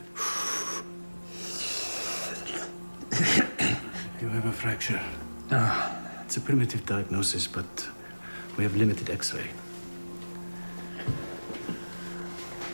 You have a fracture. It's a primitive diagnosis, but we have limited X-ray.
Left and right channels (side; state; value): both; inverted; correlation -1.00